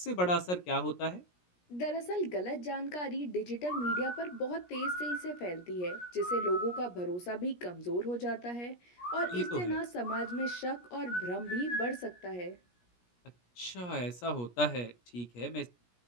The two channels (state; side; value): late; right; 17 ms